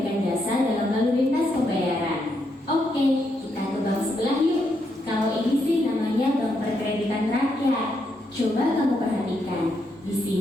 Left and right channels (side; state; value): both; normal; correlation 0.79